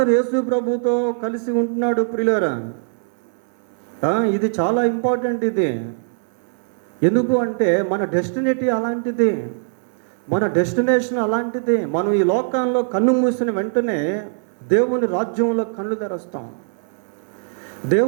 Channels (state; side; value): silent; left; 65 dB below the other